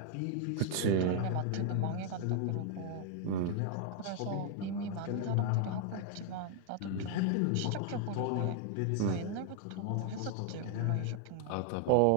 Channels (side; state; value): both; different; correlation 0.00